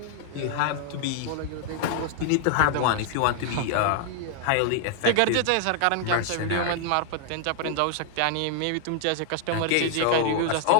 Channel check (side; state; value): both; different; correlation 0.00